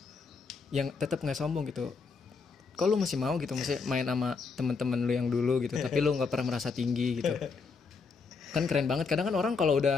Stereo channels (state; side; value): quieter; right; 4.9 dB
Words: yang tetap nggak sombong gitu. Kok lu masih mau gitu, masih main sama teman-teman lu yang dulu gitu, tapi lu nggak pernah merasa tinggi gitu. Kan keren banget. Kadang kan orang kalau